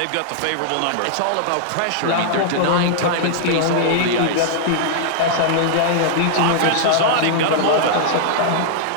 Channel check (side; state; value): both; different; correlation -0.01